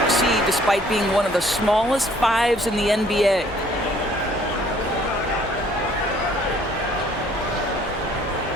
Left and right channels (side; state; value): both; normal; correlation 0.59